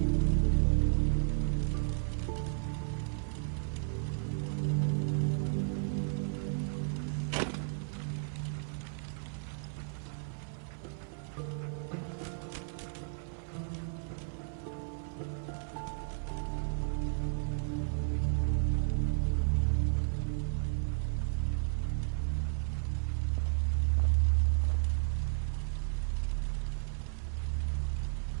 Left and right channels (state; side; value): silent; left; 55 dB below the other